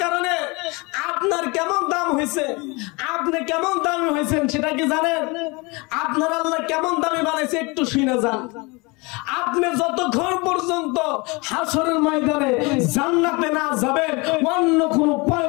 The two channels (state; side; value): quieter; right; 26.9 dB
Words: কারণে আপনার কেমন দাম হয়েছে, আপনি কেমন দামি হয়েছেন সেটা কি জানেন? আপনার আল্লাহ কেমন দামি বানাইছে একটু শুনে যান। আপনি যতক্ষণ পর্যন্ত হাসরের ময়দানে জান্নাতে না যাবেন অন্য কোন